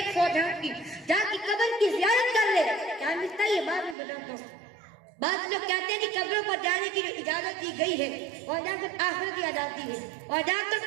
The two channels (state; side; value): drops out; left; at 4.0 s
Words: فوج ہے ان کی، جا کی قبر کی زیارت کر لے، کیا ملتا ہے یہ بعد میں بتاتا ہوں۔ بعض لوگ کہتے ہیں کہ قبروں پر جانے کی جو اجازت دی گئی ہے اور جا کر آخرت دیا جاتی ہے اور جا کر